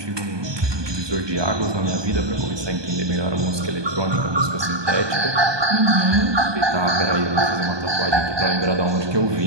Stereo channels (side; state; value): left; late; 1.2 ms